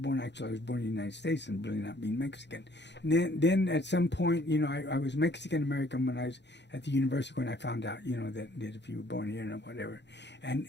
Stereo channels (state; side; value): late; right; 0.51 ms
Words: Actually, I was born in the United States and really not being Mexican. And then at some point, I was Mexican American when I was at the university when I found out, that if you were born here and whatever. And